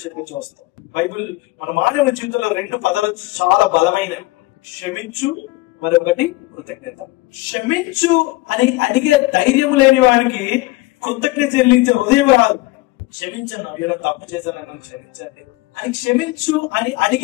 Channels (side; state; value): right; quieter; 21.0 dB